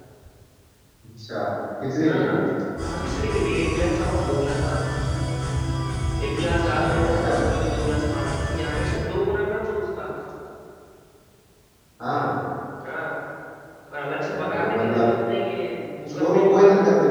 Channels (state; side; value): identical; both; correlation 1.00